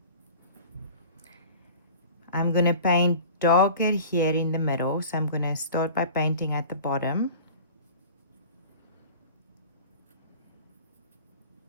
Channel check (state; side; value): inverted; both; correlation -0.41